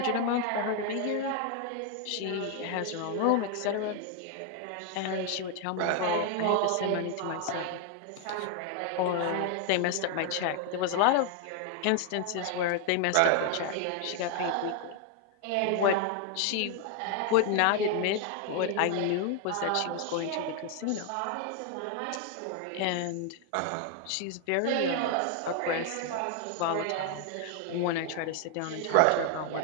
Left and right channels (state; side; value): different; both; correlation 0.01